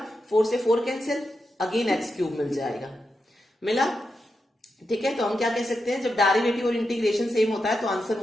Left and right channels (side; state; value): both; normal; correlation 0.87